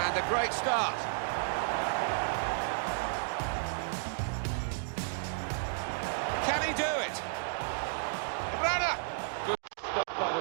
And a great start. Can he do it? Rana! Good stop by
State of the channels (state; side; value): silent; left; digital silence